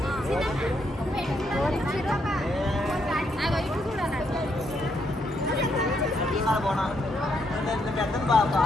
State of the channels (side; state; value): both; normal; correlation 0.76